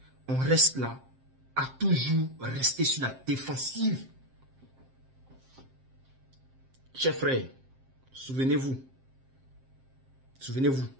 on reste là à toujours rester sur la défensive? Chers frères, souvenez-vous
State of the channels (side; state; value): left; late; 7.6 ms